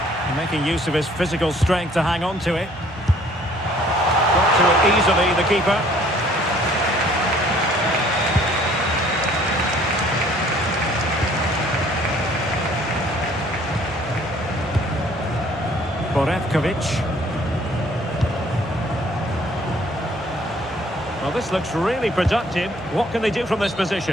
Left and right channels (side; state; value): both; normal; correlation 0.58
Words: And making use of his physical strength to hang on to it. Got to it easily, the keeper. Borevkovic. Well, this looks really productive. What can they do from this